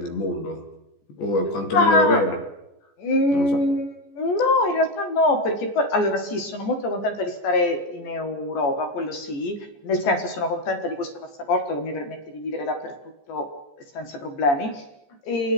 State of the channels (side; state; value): right; late; 14 ms